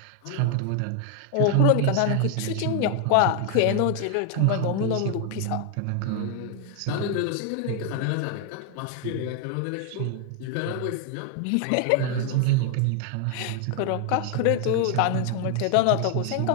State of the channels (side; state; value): both; different; correlation 0.00